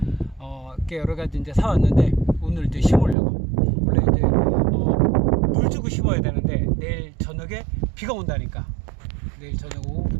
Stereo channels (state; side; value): drops out; left; at 3.2 s